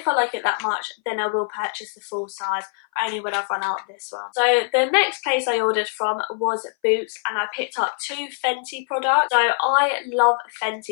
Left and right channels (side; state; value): right; silent; 59 dB below the other